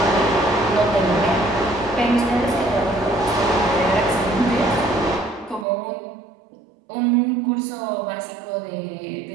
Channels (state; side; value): drops out; left; at 5.7 s